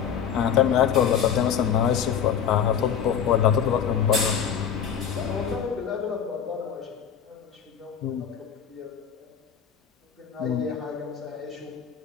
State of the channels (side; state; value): right; quieter; 8.1 dB